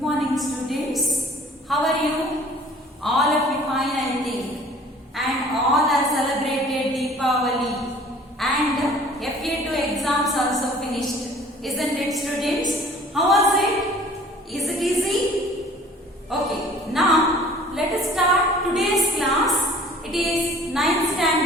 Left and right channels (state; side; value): normal; both; correlation 0.51